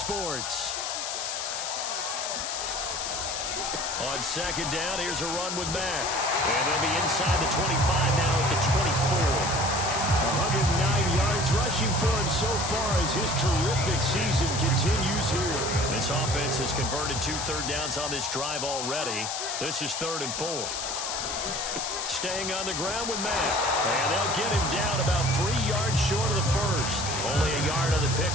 On 2nd down, here's a run with Mack. And they'll be inside the 25 now at the 24. 109 yards rushing for him so far as his terrific season continues here. This offense has converted 2 third downs on this drive already. This is 3rd and 4. Staying on the ground with Mack. And they'll get him down about 3 yards short of the 1st. Only a yard on the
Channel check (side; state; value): left; noise; hiss, 4 dB below the sound